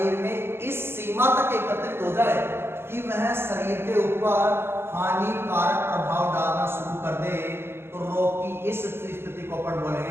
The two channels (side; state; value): left; late; 0.11 ms